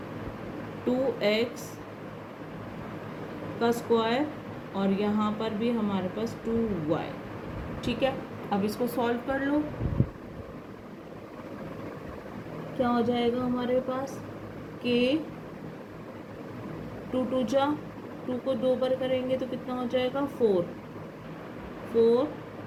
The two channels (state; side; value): identical; both; correlation 1.00